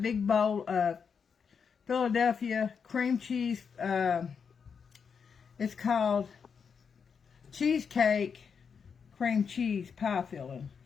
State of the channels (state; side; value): quieter; right; 6.3 dB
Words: big bowl of Philadelphia cream cheese. It's called cheesecake cream cheese pie filling.